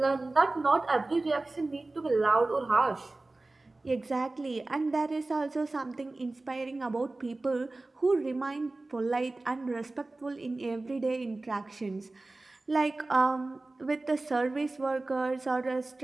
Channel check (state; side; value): quieter; left; 3.1 dB